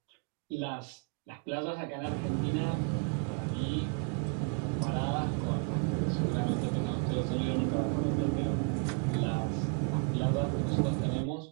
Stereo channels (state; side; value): quieter; left; 35.9 dB